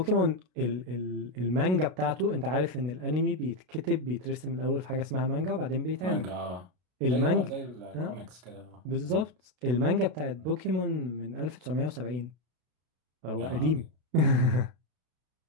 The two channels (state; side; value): late; left; 32 ms